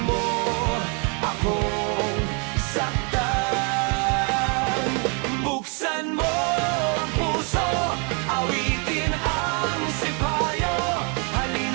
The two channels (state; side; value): quieter; left; 35.5 dB